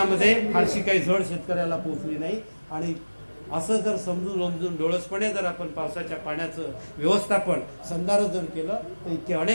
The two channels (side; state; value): both; inverted; correlation -1.00